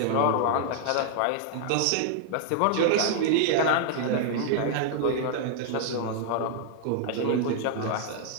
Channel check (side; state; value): both; different; correlation -0.01